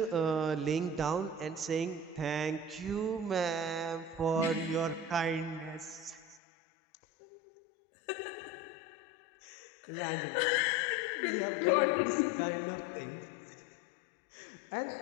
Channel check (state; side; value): drops out; right; at 6.4 s